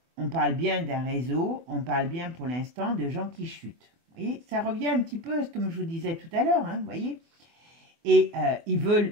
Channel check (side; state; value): left; late; 24 ms